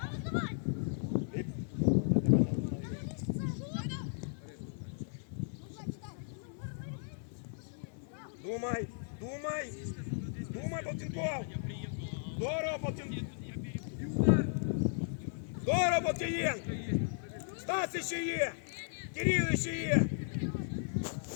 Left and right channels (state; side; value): silent; right; 54 dB below the other